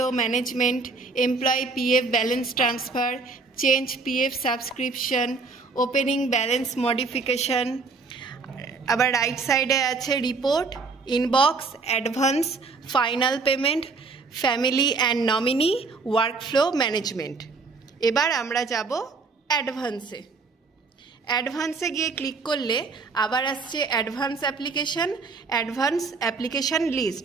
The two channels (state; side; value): quieter; left; 4.2 dB